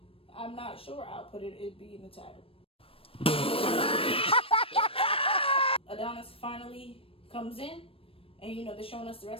I'm not sure. I'll put it, it'd be in the title. Adonis finally comes in, and they're showing us the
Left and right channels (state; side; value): late; right; 0.27 ms